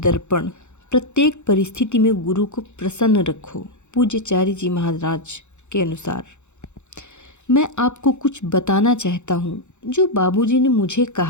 प्रत्येक परिस्थिति में गुरु को प्रसन्न रखो। पूज्यचार्य जी महाराज के अनुसार मैं आपको कुछ बताना चाहता हूँ जो बाबूजी ने मुझे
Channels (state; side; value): late; right; 0.83 ms